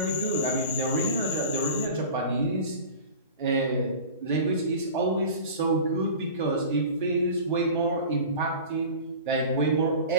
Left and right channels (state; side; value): inverted; both; correlation -0.37